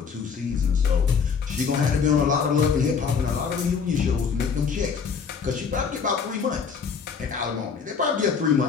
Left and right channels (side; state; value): right; quieter; 6.0 dB